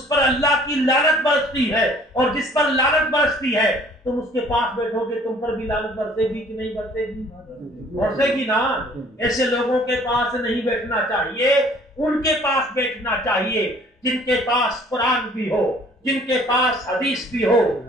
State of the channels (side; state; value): both; normal; correlation 0.55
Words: پر اللہ کی لعنت برستی ہے۔ اور جس پر لعنت برستی ہے تم اس کے پاس بیٹھو گے تم پر بھی لعنت برسے گی کہ نہیں برسے گی؟ برسے گی نا۔ ایسے لوگوں کے پاس نہیں بیٹھنا چاہیے، ان کے پاس بیٹھنا چاہیے جن کے پاس قرآن بھی ہو، جن کے پاس حدیث بھی ہو،